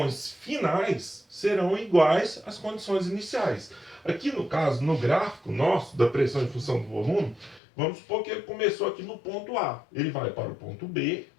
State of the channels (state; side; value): drops out; right; at 7.6 s